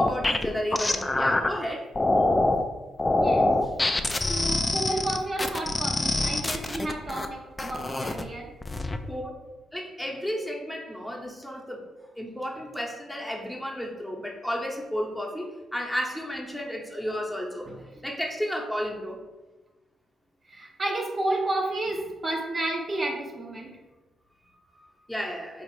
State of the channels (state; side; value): normal; both; correlation 0.91